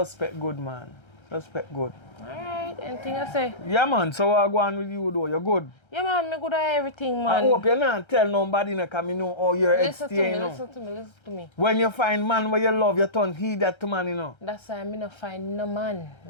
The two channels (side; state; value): right; late; 1.3 ms